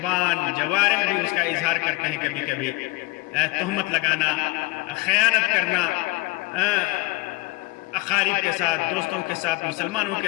جوارح بھی اس کا اظہار کرتے ہیں. کبھی کبھی تہمت لگانا، خیانت کرنا اقارب کے ساتھ، دوستوں کے ساتھ، مسلمانوں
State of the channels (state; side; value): quieter; right; 22.1 dB